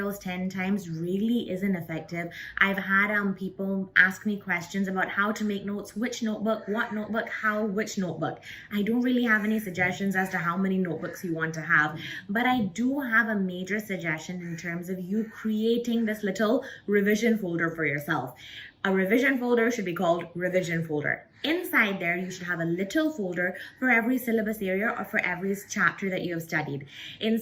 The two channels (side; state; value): both; identical; correlation 1.00